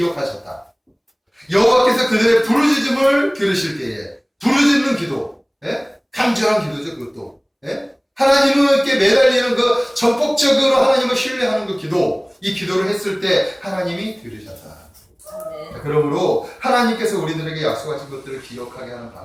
여호와께서 그들의 부르짖음을 들으실 때에 부르짖는 기도, 예? 간절한 기도죠. 그것도 예? 하나님께 매달리는 그 전폭적으로 하나님을 신뢰하는 그 기도, 이 기도를 했을 때 하나님이 들으셨다. 아멘. 그러므로 하나님께서 우리들에게 약속하신 것들을 기억하게 하는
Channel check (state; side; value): identical; both; correlation 1.00